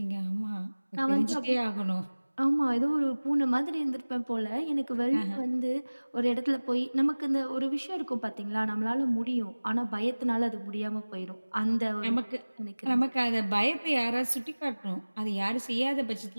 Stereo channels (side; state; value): both; inverted; correlation -1.00